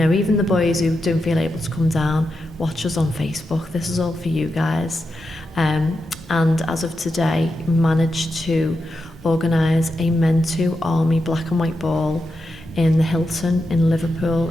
the boys who don't feel able to come down, watch us on Facebook. This is all for you guys. And as of today, managed to organise a Men2 Army black and white ball in the Hilton in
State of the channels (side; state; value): both; normal; correlation 0.87